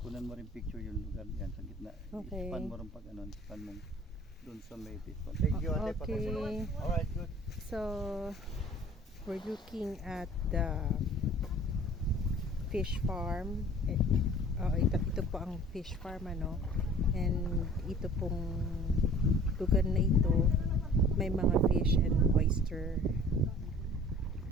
Kunan mo rin picture yung lugar yan sa gitna. Okay. Span mo rin pag ano, span mo dun sa may pito. Thank you, ate. Okay. Alright, good. So, we're looking at the fish farm. Ito po ang fish farm, ano. And ito pong lugar na ito, may mga fish and oyster.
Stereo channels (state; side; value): normal; both; correlation 0.48